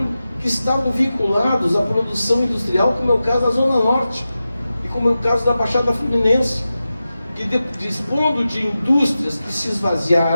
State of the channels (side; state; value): both; inverted; correlation -0.93